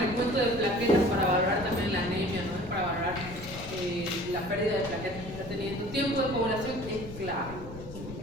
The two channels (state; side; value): noise; left; rumble, 13 dB below the sound